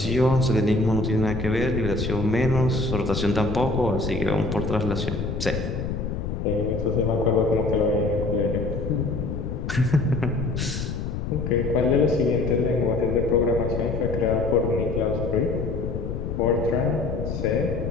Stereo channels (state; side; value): noise; left; rumble, 4 dB below the sound